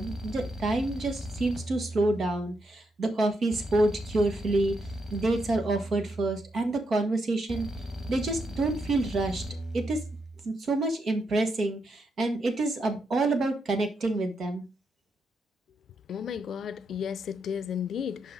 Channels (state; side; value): normal; both; correlation 0.81